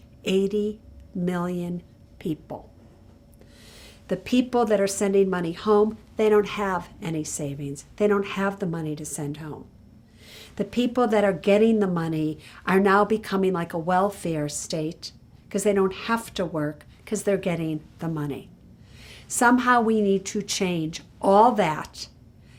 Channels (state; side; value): identical; both; correlation 1.00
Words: 80 million people. The people that are sending money home, they don't have any savings. They don't have the money to send home. The people that are getting the money are now becoming like a welfare state because they don't have to work because they're getting the money. Somehow we need to change all that